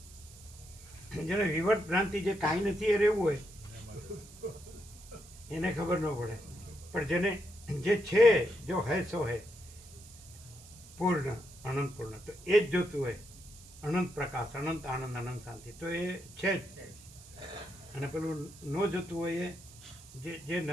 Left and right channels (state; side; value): noise; right; hiss, 20 dB below the sound